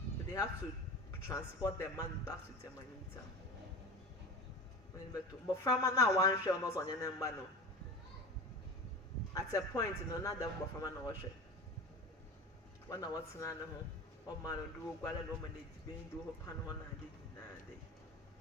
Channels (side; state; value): both; normal; correlation 0.32